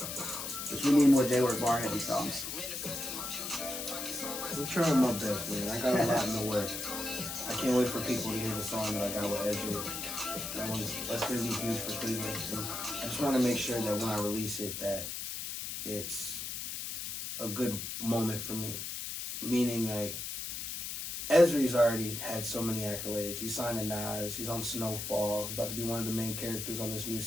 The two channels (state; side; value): noise; left; hiss, 5 dB below the sound